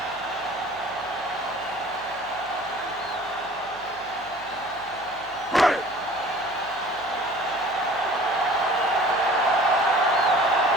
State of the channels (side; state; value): right; noise; hum, 26 dB below the sound